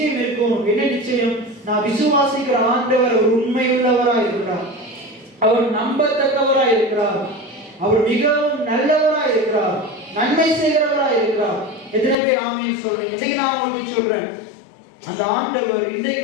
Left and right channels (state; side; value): drops out; right; at 12.2 s